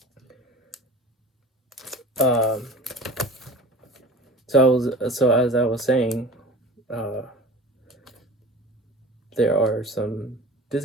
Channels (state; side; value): normal; both; correlation 0.38